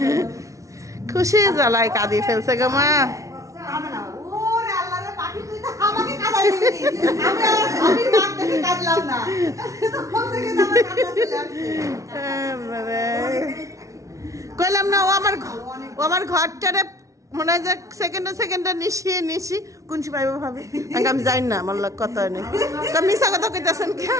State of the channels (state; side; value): late; left; 0.15 ms